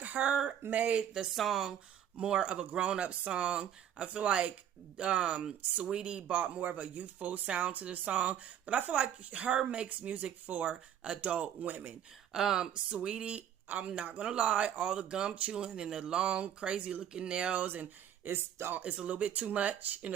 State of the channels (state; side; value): quieter; left; 9.9 dB